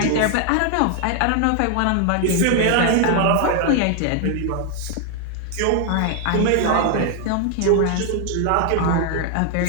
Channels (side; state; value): both; different; correlation 0.00